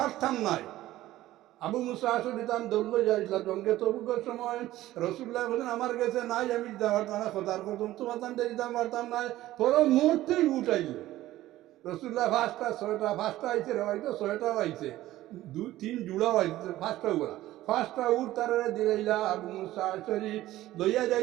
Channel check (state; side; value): quieter; left; 15.4 dB